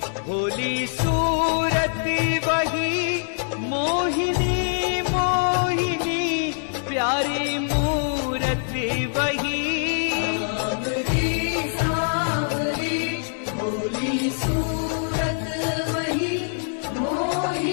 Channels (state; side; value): silent; right; 63 dB below the other